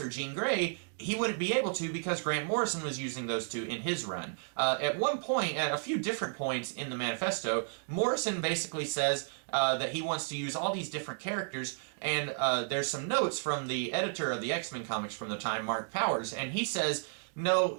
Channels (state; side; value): silent; left; digital silence